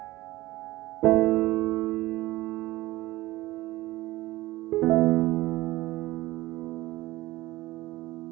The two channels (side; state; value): left; quieter; 18.3 dB